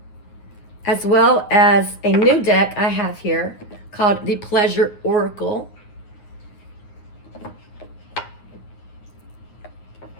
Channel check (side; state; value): right; late; 9.5 ms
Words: as well as a new deck I have here called the Pleasure Oracle.